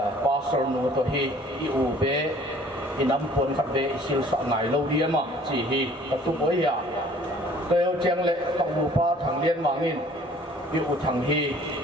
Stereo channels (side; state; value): both; normal; correlation 0.54